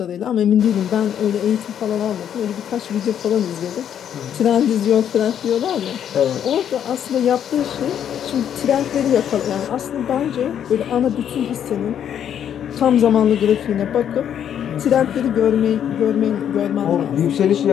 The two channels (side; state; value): right; quieter; 9.3 dB